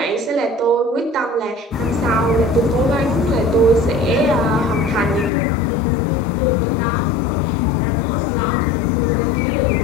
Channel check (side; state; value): right; drops out; at 5.3 s